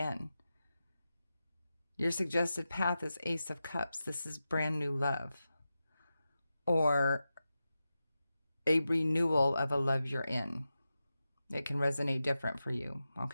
Your suggested path is Ace of Cups. This is brand new love, or a renewal of a love you're in. It can resonate different for you,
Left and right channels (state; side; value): inverted; both; correlation -0.91